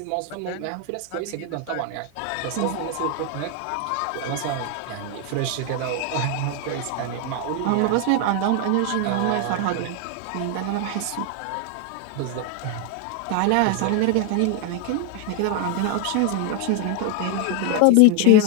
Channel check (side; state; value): both; different; correlation 0.00